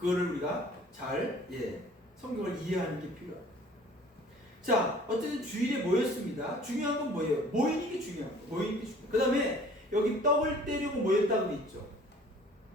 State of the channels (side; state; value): both; normal; correlation 0.51